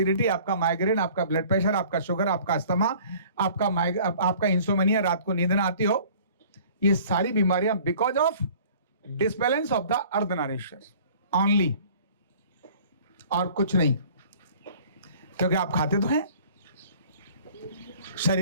आपका माइग्रेन, आपका ब्लड प्रेशर, आपका शुगर, आपका अस्थमा, आपका इंसोमेनिया, रात को नींद ना आती हो, ये सारी बीमारियां because of disbalance of the Ardhanarishvara only, और कुछ नहीं। क्योंकि आप खाते तो हैं,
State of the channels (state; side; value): inverted; both; correlation -0.50